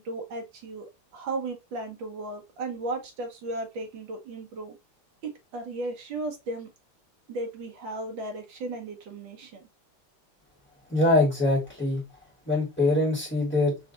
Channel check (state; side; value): normal; both; correlation 0.34